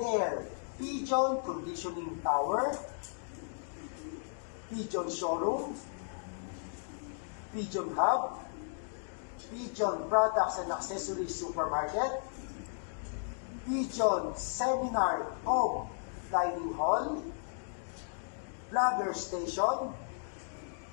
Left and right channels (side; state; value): right; silent; digital silence